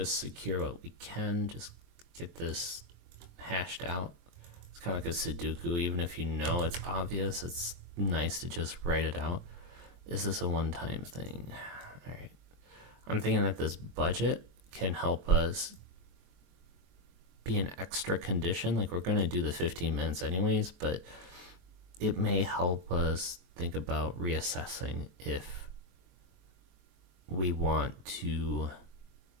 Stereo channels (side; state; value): left; late; 23 ms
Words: secure what we can, just get this hashed out. It's kind of like a Sudoku. Even if you know it's obvious, it's nice to just write it out. Is this a one-time thing? All right. I'm thinking that this budget can help us be an extra condition. Like, we're going to do the 15 minutes anyways, but it may help us think about reassessing if we want to